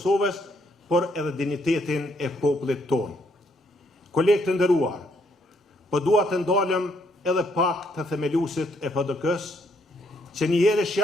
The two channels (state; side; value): normal; both; correlation 0.71